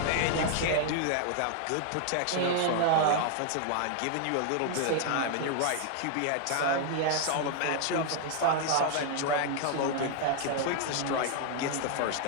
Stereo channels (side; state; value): both; different; correlation 0.00